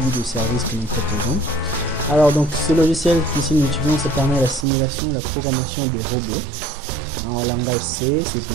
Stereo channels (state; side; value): drops out; left; at 4.7 s